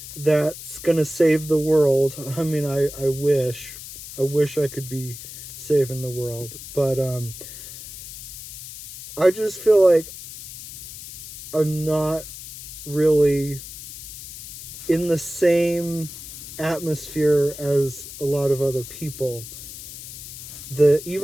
that's going to save the world. I mean, I wish I could be saving the world, but I just feel like I'm not really in the same atmosphere as a lot of other people.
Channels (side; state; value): left; noise; hiss, 12 dB below the sound